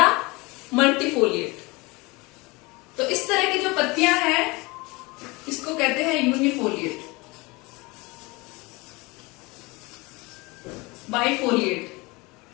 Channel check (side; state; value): right; quieter; 24.6 dB